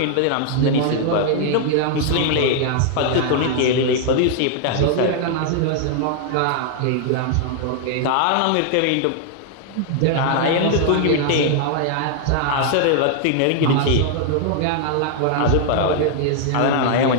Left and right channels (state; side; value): different; both; correlation 0.00